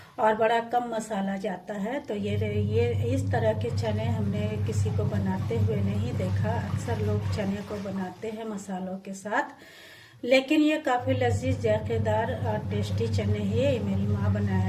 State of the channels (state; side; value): identical; both; correlation 1.00